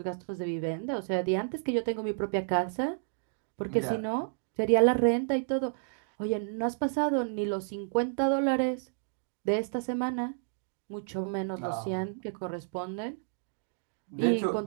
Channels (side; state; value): left; silent; digital silence